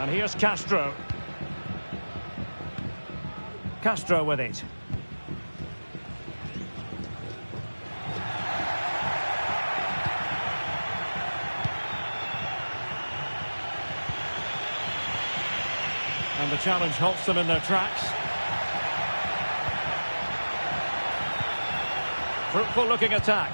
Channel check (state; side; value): inverted; both; correlation -1.00